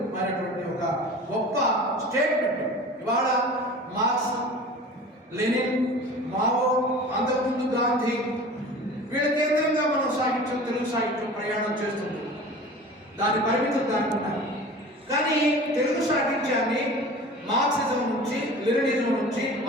అయినటువంటి ఒక గొప్ప స్టేట్మెంట్. ఇవాళ మార్క్స్, లెనిన్, మావో, అంతకుముందు గాంధీ, వీళ్ళ కేంద్రంగా మనం సాహిత్యం, తెలుగు సాహిత్యం ప్రయాణం చేస్తుంది. దాని పరిమితులు దానికి ఉన్నాయి. కానీ తెలుగు సాహిత్యాన్ని మార్క్సిజం నుంచి, లెనినిజం నుంచి,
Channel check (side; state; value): both; normal; correlation 0.39